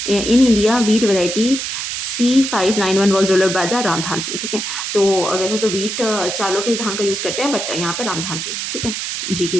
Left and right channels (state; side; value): noise; right; hiss, 4 dB below the sound